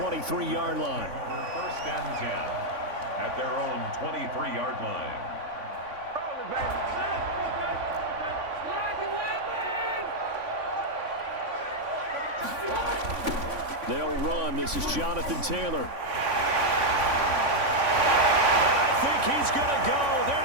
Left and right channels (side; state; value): left; late; 3.5 ms